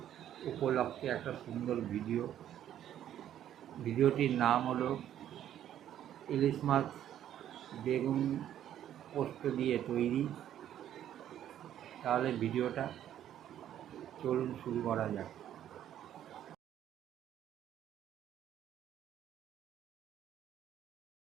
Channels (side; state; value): left; quieter; 11.0 dB